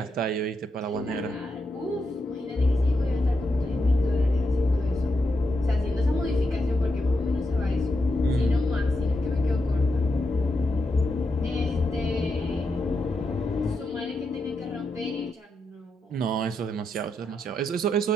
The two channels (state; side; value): normal; both; correlation 0.85